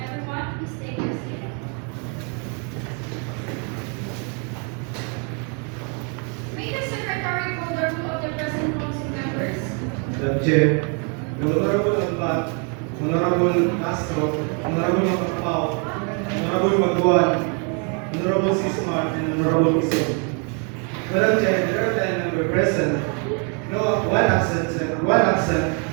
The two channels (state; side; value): quieter; left; 37.6 dB